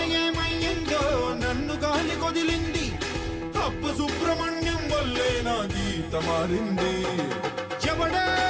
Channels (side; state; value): both; identical; correlation 1.00